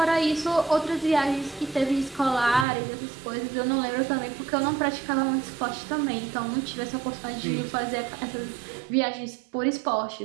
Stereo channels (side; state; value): left; drops out; at 2.7 s